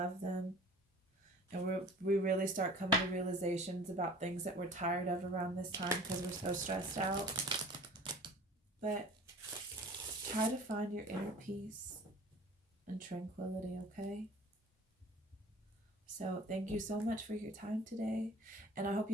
them. And we really start coming to realizations about things that we're tired of around this time because we're so stressed out. But try to find your inner peace and tranquility, okay? So thank you so much for your time today, and I hope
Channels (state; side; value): normal; both; correlation 0.45